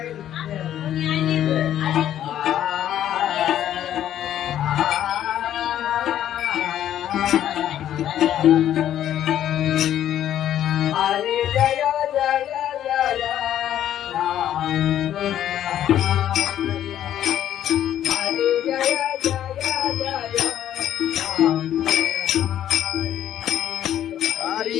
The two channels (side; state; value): right; quieter; 11.3 dB